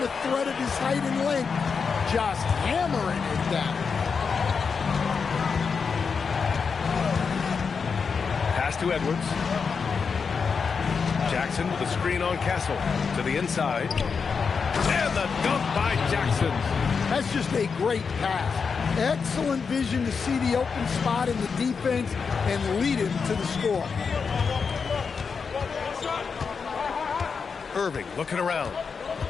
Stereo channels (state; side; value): quieter; right; 5.6 dB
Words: threat of his height and length. Just hammering it down. Pass to Edwards. Jackson with a screen on Castle. To the inside. And the dunk by Jackson. That's just a great pass. Excellent vision to see the open spot in the defense and lead him to the score. Irving looking around.